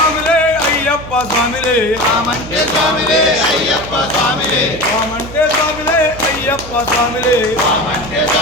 అయ్యప్ప స్వామిలే రామంటే స్వామిలే అయ్యప్ప స్వామిలే రామంటే స్వామిలే అయ్యప్ప స్వామిలే రామంటే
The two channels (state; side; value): noise; right; hum, 14 dB below the sound